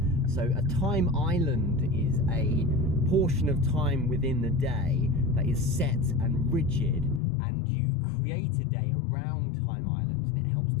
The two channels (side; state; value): right; drops out; at 7.2 s